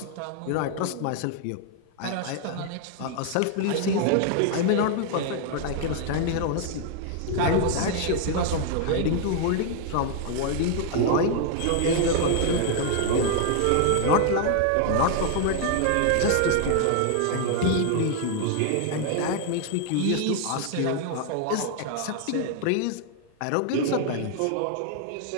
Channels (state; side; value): different; both; correlation 0.00